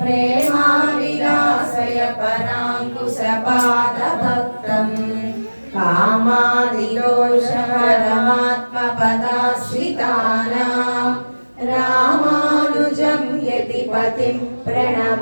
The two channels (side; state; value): both; inverted; correlation -1.00